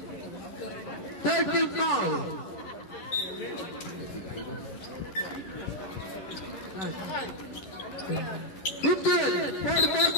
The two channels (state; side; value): late; right; 10 ms